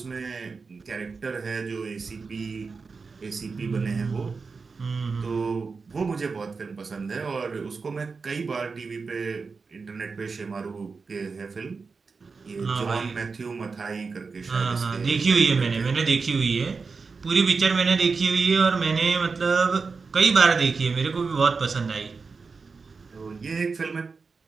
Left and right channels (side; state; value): left; quieter; 4.7 dB